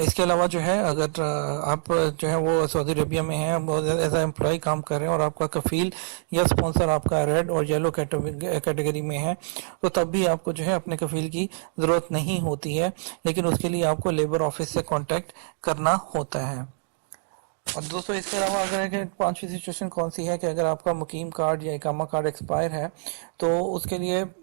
इसके अलावा जो है अगर आप जो है वो सऊदी अरेबिया में हैं, एज ए एम्प्लॉय काम कर रहे हैं और आपका कफ़ील या स्पॉन्सर आपका रेड और येलो कैटेगरी में है, तो तब भी आपको जो है अपने कफ़ील की ज़रूरत नहीं होती है, लेकिन उसके लिए आपको लेबर ऑफिस से कांटेक्ट करना होता है। और दोस्तों, इसके अलावा अगर 5वीं सिचुएशन कौन सी है कि अगर आपका मुकीम कार्ड या इकामा कार्ड एक्सपायर है, तो उसके लिए,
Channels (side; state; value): left; silent; digital silence